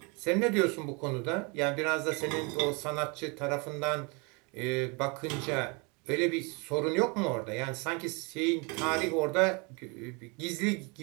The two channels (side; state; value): left; quieter; 30.6 dB